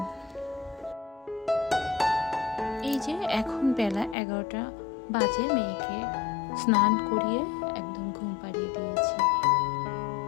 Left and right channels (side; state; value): right; drops out; at 4.2 s